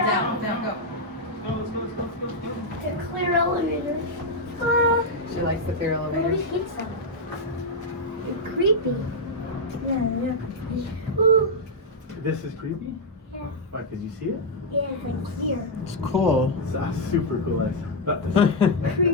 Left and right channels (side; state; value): both; normal; correlation -0.02